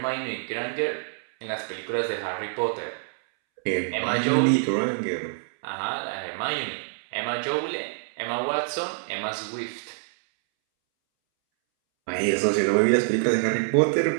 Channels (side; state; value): left; silent; 61 dB below the other